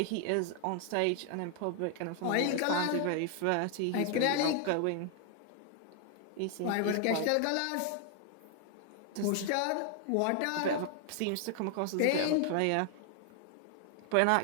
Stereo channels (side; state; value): both; different; correlation 0.00